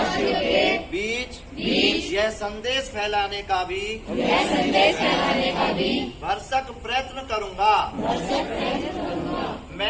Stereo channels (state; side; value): identical; both; correlation 1.00